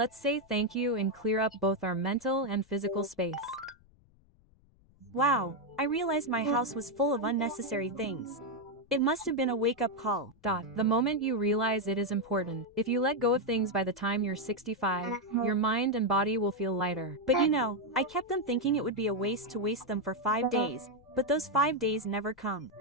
say thank you and clear up both our mental and physical space. Wow, I realized my house was full of unnecessary things. It must have been a wake-up call. The moment you realize it is important, if you let go of things by the time you're 65, your mind and body will feel lighter. But you know, I kept on thinking it would be a waste to waste them for 5 days. But those 5 days never come.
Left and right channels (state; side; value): noise; left; rumble, 29 dB below the sound